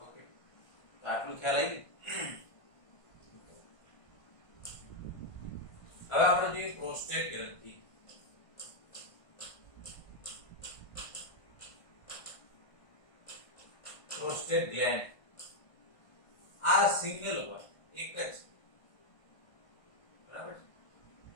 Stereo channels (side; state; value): right; late; 1.5 ms